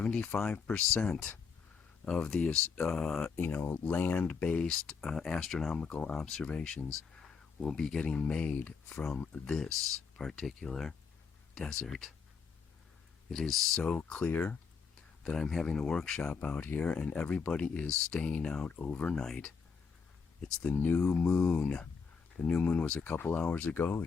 of the land-based astronomical observations will be getting made from this particular desert. It is so clear that I'm having a workshop out here and everybody is staying out overnight. It's the new moon. The new moon was a couple hours ago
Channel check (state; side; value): quieter; right; 5.5 dB